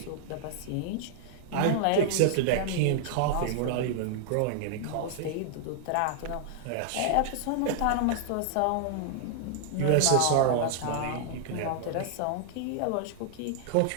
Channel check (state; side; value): different; both; correlation -0.01